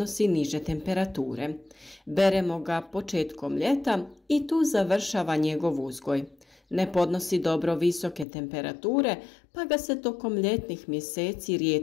niže temperature. Beremo ga početkom ljeta i tu završava njegov uzgoj. Ne podnosi dobro visoke temperature, pa ga se tokom ljetnih mjeseci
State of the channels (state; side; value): drops out; right; at 8.2 s